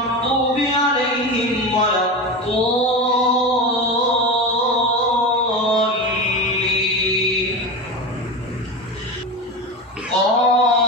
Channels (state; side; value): normal; both; correlation 0.23